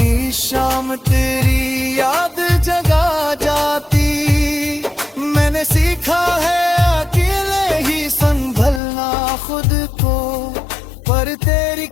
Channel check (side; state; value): right; drops out; at 8.8 s